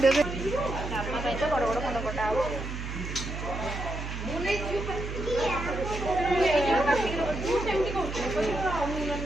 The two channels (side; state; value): right; noise; hum, 6 dB below the sound